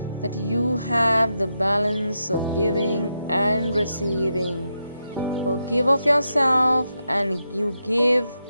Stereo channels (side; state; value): both; inverted; correlation -0.85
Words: that you have the balance of giving and receiving. So give of yourself and you give